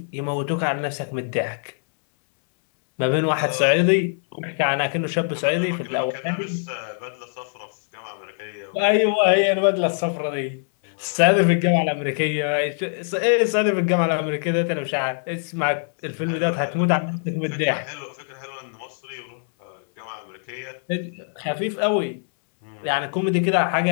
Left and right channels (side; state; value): right; silent; 63 dB below the other